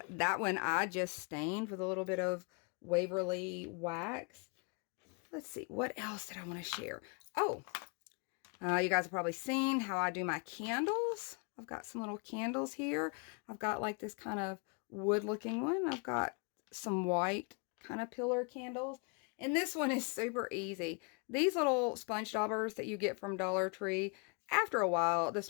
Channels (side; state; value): right; quieter; 35.8 dB